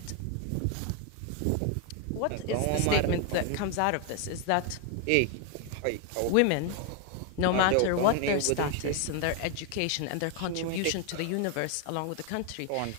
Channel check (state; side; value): different; both; correlation 0.01